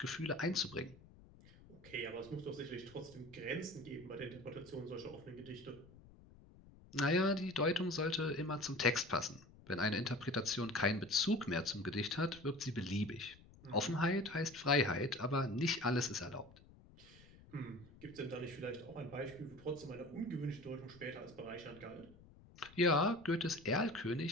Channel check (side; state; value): left; noise; rumble, 22 dB below the sound